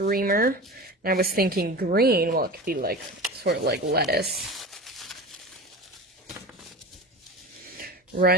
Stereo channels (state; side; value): normal; both; correlation 0.32